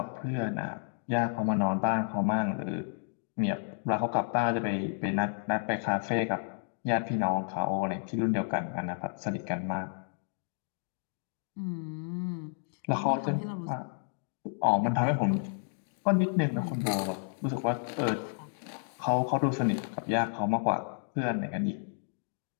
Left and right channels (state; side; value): silent; right; digital silence